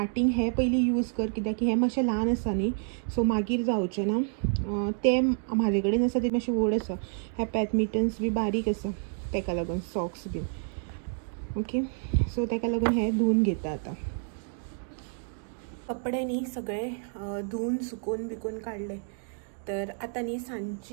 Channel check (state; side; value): silent; left; 58 dB below the other